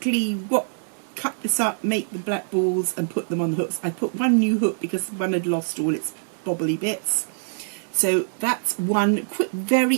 cut this up, make the black balls and put them on the hooks. I put one new hook because one had lost all its bobbly bits. So that's one quick,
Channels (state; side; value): silent; left; digital silence